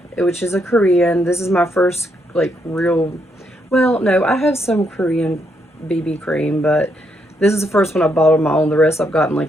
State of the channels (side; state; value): both; normal; correlation 0.77